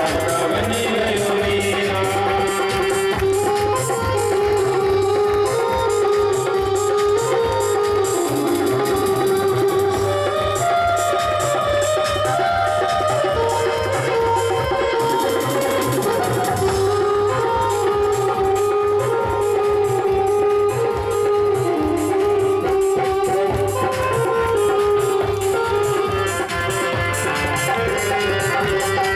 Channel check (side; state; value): both; identical; correlation 1.00